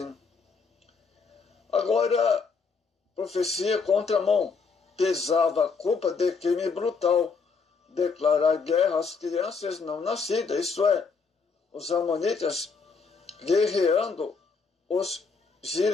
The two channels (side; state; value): right; quieter; 4.9 dB